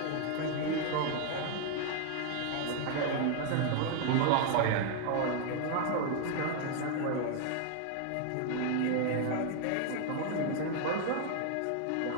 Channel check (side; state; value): both; different; correlation 0.00